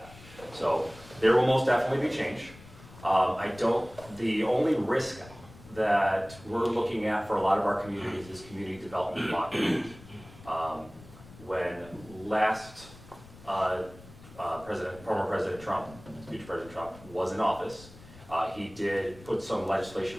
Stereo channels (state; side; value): noise; left; rumble, 20 dB below the sound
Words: So there will most definitely be change. The only risk that we're looking at for a lot of our communities is community development blockage. When last former President Trump, future President Trump, was in office, he did put some legislation